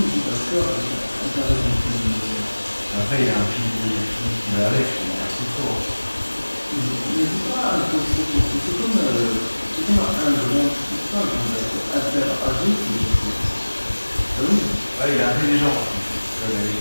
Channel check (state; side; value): inverted; both; correlation -1.00